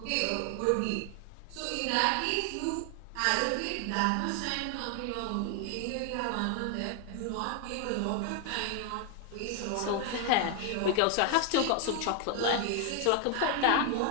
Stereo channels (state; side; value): different; both; correlation 0.00